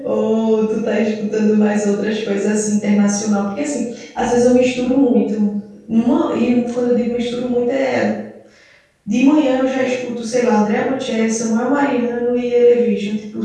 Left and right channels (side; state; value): both; identical; correlation 1.00